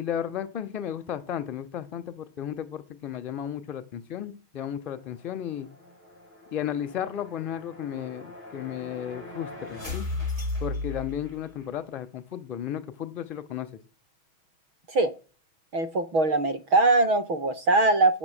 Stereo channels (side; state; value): left; late; 6.3 ms